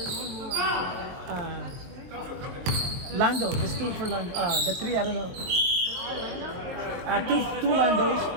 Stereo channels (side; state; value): left; late; 22 ms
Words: Lando, there's 2 for Lando. The 3, I don't know. Two Landos.